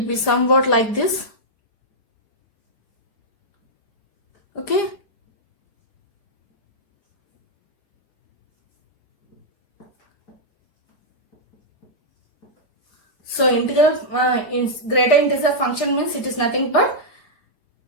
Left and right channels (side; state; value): right; late; 4.9 ms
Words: be somewhat like this. Okay. So integral greater integer function means it is nothing but,